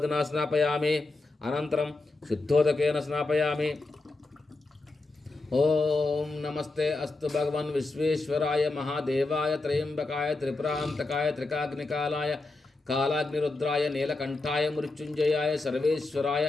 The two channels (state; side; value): quieter; right; 3.2 dB